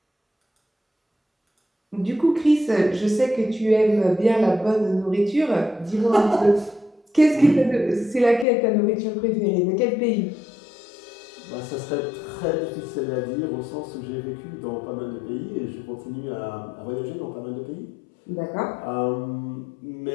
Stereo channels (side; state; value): right; drops out; at 8.5 s